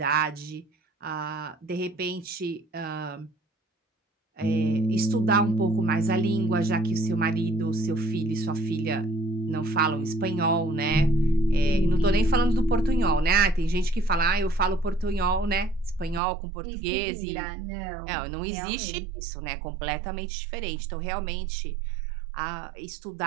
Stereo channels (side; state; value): left; drops out; at 16.2 s